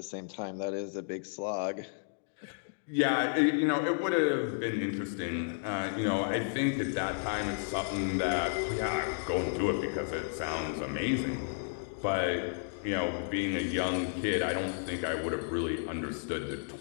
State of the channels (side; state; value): right; silent; digital silence